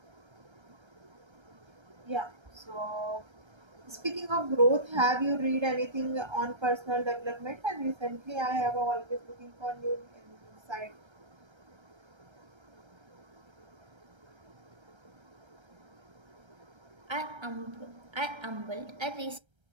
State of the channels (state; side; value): late; left; 1.3 ms